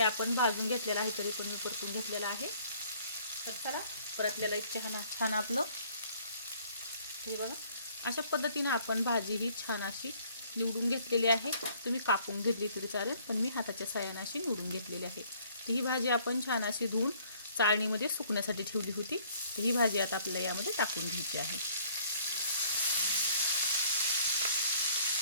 आपण भाजून घेतलेलं आहे तरी पण मी परतून घेतलेलं आहे. तर चला परतलेलं एक छान आपलं हे बघा अशा पद्धतीने आपण भाजी ही छान अशी निवडून घेतलेली आहे. तुम्ही कापून घेतली तरी चालेल, पण मी हाताच्या साहाय्याने अशी निवडून घेतलेली आहे. तर ही भाजी आपण छान अशी धुवून चाळणीमध्ये सुकण्यासाठी ठेवली होती. तर ही भाजी आता आपल्याला यामध्ये टाकून घ्यायची आहे.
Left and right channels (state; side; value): inverted; both; correlation -0.59